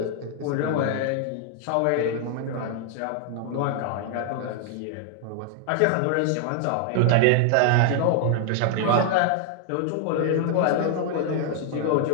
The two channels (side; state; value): both; different; correlation 0.00